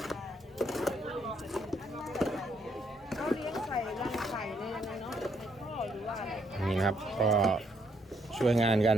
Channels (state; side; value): normal; both; correlation 0.72